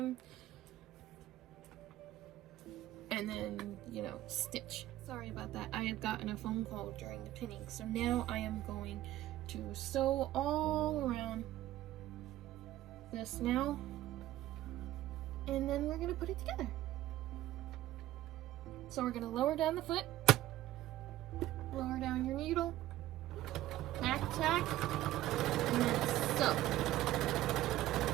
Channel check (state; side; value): quieter; left; 14.8 dB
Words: And then, you know, stitch. Sorry about that. I had gotten a phone call during the pinning. So now I am going to sew all around this now. And then we're going to put it together. So we're going to lower down the foot. Lower down your needle, tack, and then sew.